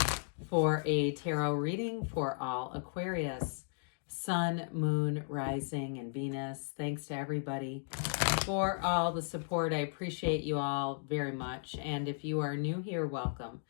for a tarot reading for all Aquarius, Sun, Moon, Rising, and Venus. Thanks to everybody for all the support. I appreciate you all very much. And if you are new here, welcome.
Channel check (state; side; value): silent; right; digital silence